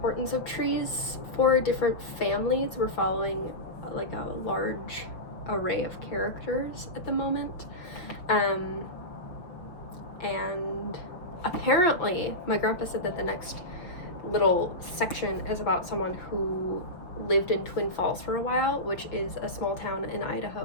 of trees for different families. We're following a large array of characters at the moment, and apparently my grandpa said that the next little section is about someone who lived in Twin Falls for a while, which is a small town in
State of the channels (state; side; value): late; right; 6.0 ms